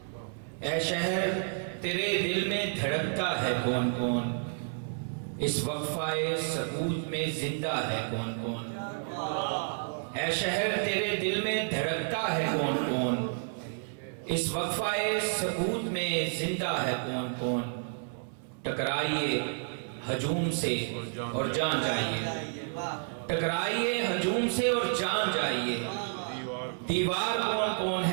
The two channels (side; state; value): left; silent; 57 dB below the other